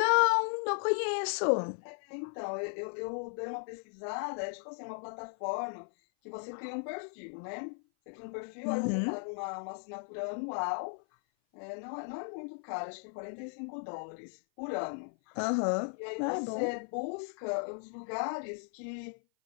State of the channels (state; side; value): silent; right; 54 dB below the other